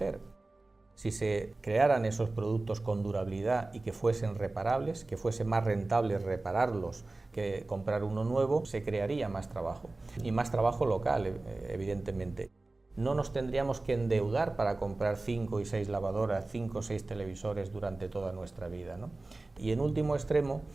Si se crearan esos productos con durabilidad y que fuesen reparables, que fuese más rentable repararlos que comprar uno nuevo, se crearía más trabajo. Y más trabajo local, evidentemente. No nos tendríamos que endeudar para comprar 5 y 6 lavadoras, 5 o 6 televisores durante toda nuestra vida, ¿no? Y en último extremo,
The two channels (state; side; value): quieter; left; 3.1 dB